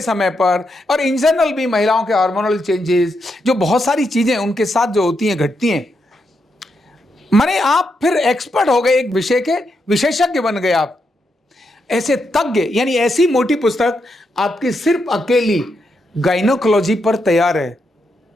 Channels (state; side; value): normal; both; correlation 0.82